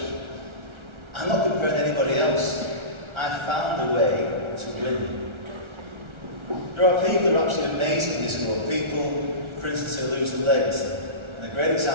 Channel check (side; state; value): left; late; 1.4 ms